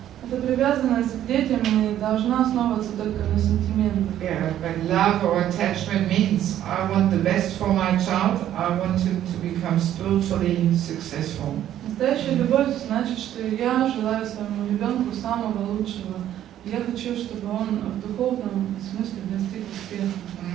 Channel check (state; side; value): quieter; left; 11.6 dB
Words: эта привязанность к детям не должна основываться только на сентиментах. Yeah, but love or attachment means I want the best for my child, I want him to become spiritually successful. Настоящая любовь значит, что я желаю своему ребенку самого лучшего. Я хочу, чтобы он в духовном смысле достиг успеха.